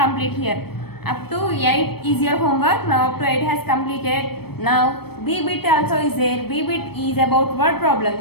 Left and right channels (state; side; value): late; right; 0.97 ms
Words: here. Up to 8 is your homework. Now up to 8 has completed. Now B bit also is there. B bit is about word